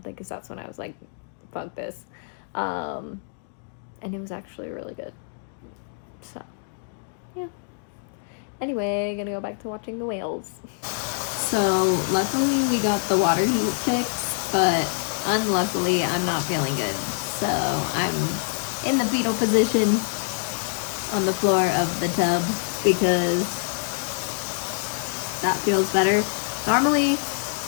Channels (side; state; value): right; silent; digital silence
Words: because that's when I was like, fuck this. And it was actually really good. So, yeah. Anyway, gonna go back to watching the whales. So, luckily we got the water heat fixed, but unluckily I'm not feeling good. So, I'm in the fetal position on the floor of the tub because that feels better. Normally,